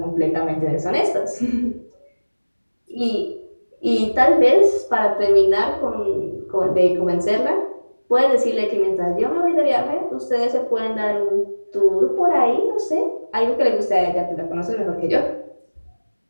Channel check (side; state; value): both; inverted; correlation -1.00